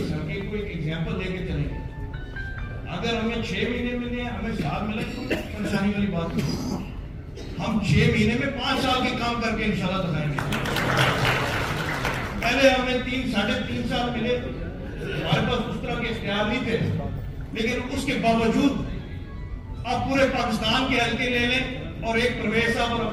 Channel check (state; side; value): identical; both; correlation 1.00